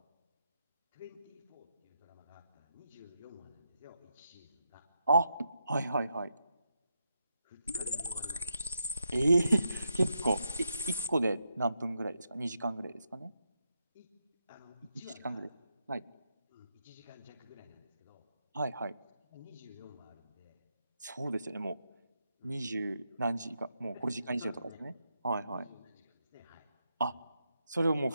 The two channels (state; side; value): inverted; both; correlation -0.83